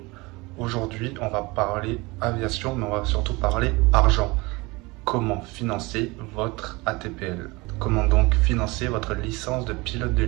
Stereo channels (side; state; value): left; quieter; 24.1 dB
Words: Aujourd'hui, on va parler aviation, mais on va surtout parler argent. Comment financer votre ATPL? Comment donc financer votre licence de pilote de